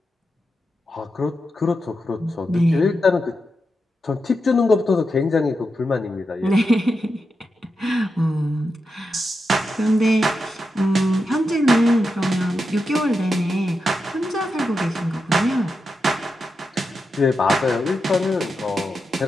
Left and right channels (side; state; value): both; normal; correlation 0.87